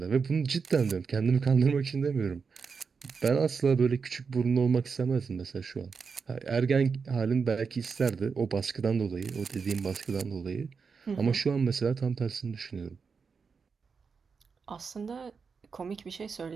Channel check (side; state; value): left; quieter; 5.4 dB